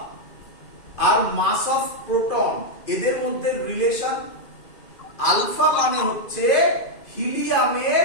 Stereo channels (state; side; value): late; right; 2.4 ms